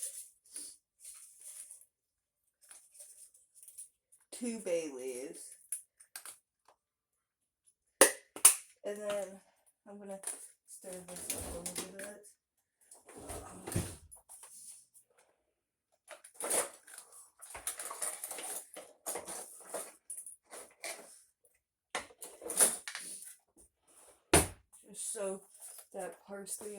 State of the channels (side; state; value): both; normal; correlation 0.96